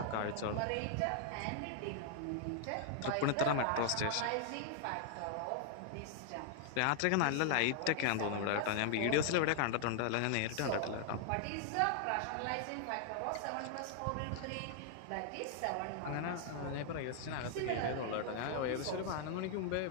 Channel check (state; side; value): different; both; correlation 0.00